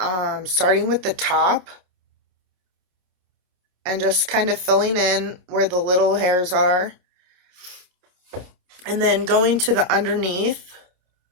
starting with the top and just kind of filling in where the little hairs are, and then going to the underneath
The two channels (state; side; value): late; left; 28 ms